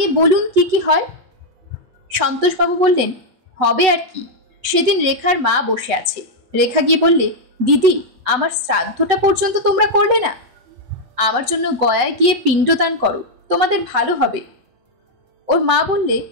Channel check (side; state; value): left; late; 8.0 ms